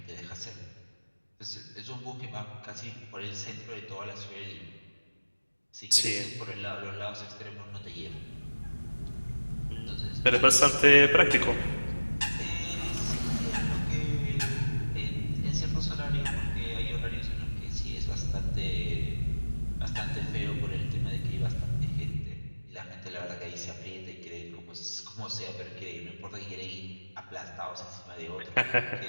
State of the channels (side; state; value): both; inverted; correlation -1.00